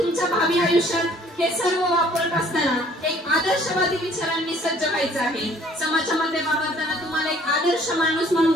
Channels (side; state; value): both; normal; correlation 0.58